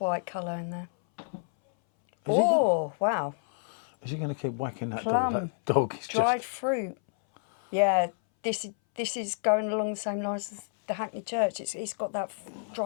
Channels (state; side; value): silent; right; 58 dB below the other